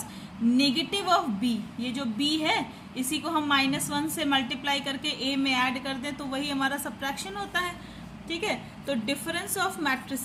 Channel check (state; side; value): identical; both; correlation 1.00